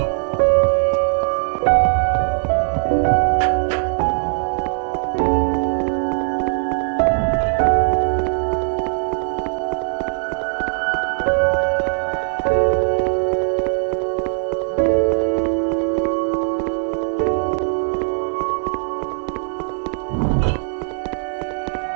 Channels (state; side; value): silent; left; digital silence